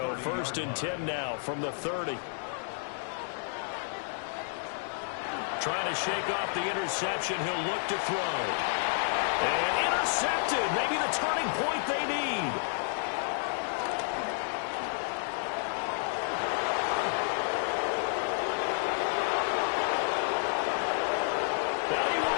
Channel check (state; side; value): silent; right; digital silence